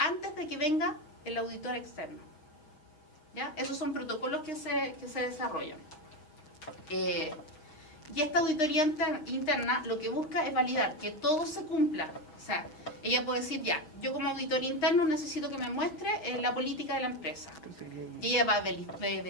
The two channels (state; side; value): late; right; 6.6 ms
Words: de que venga el auditor externo. ¿Ya? Esos son protocolos que se desarrollan. Y esta auditoría interna lo que busca es validar que todo se cumpla. O sea, ella puede decir, ya, yo como auditor interno necesito que me muestre la política de la empresa. Y ella va a